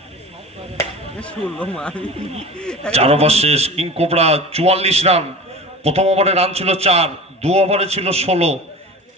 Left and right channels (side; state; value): both; normal; correlation 0.34